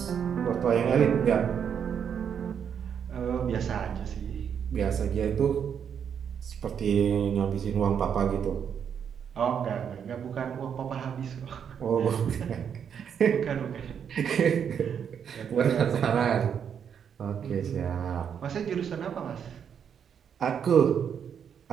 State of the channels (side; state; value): left; quieter; 7.8 dB